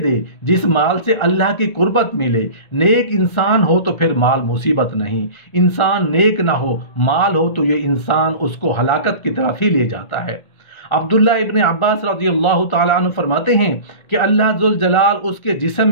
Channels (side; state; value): right; late; 1.9 ms